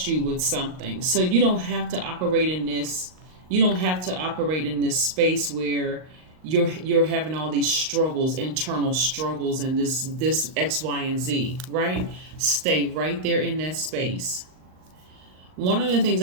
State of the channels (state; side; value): late; left; 39 ms